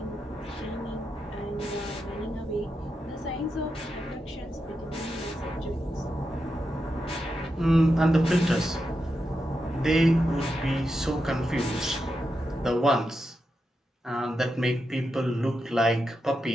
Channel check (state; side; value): normal; both; correlation 0.87